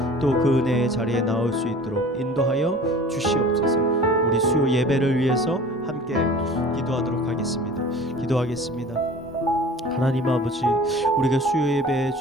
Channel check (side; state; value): both; normal; correlation 0.43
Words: 또 그 은혜의 자리에 나올 수 있도록 인도하여 주시옵소서. 우리 수요 예배를 위해서 함께 기도하도록 하겠습니다. 기도하겠습니다. 하나님 아버지, 우리가 수요 예배